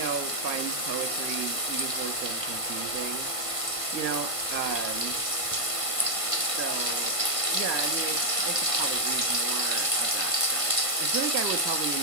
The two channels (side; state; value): left; late; 1.5 ms